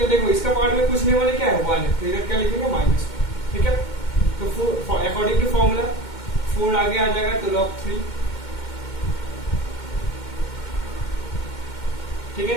देखो इसका पावर में कुछ नहीं वाले क्या है 1 है, तो इधर क्या लिखेंगे -1, ठीक है। तो 4 अकॉर्डिंग टू फॉर्मूला 4 आगे आ जाएगा, तो log 3, ठीक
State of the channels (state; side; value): late; right; 2.2 ms